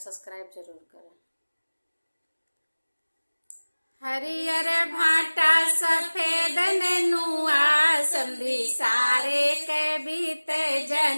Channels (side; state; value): both; inverted; correlation -1.00